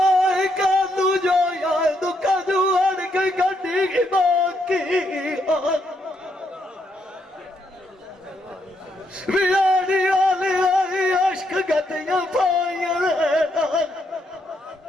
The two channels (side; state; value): both; normal; correlation 0.77